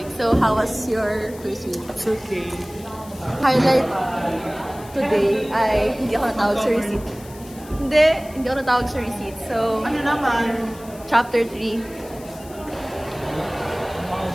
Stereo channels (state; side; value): noise; left; hiss, 20 dB below the sound